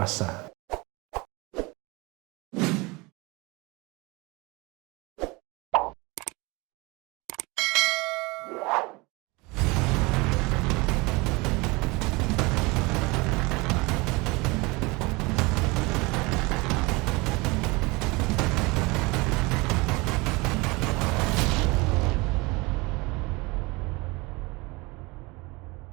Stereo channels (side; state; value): left; quieter; 24.9 dB